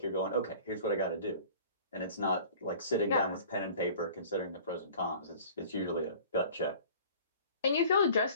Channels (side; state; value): both; inverted; correlation -0.46